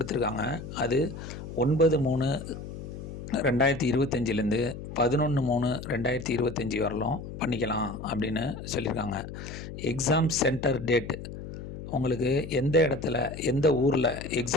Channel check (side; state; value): left; noise; hum, 10 dB below the sound